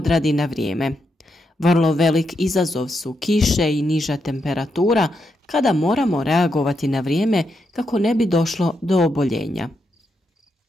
na vrijeme. Vrlo velik izazov su kiše i niža temperatura kada moramo reagovati na vrijeme kako ne bi došlo do oboljenja.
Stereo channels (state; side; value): normal; both; correlation 0.83